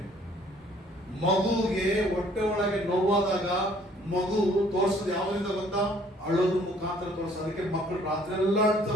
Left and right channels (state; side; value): normal; both; correlation 0.59